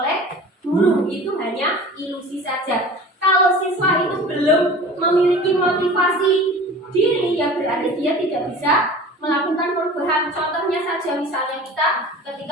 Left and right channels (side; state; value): both; normal; correlation 0.40